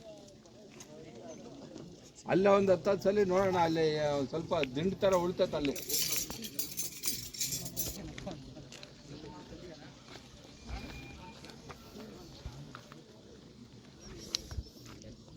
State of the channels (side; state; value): both; identical; correlation 1.00